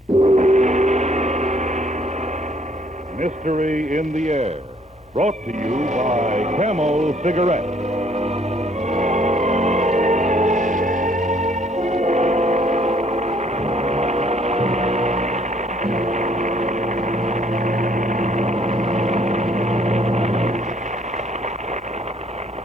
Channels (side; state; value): both; normal; correlation 0.63